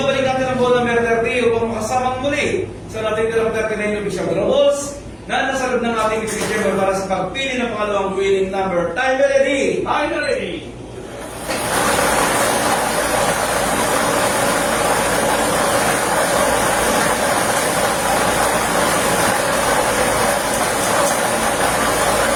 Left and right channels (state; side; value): identical; both; correlation 1.00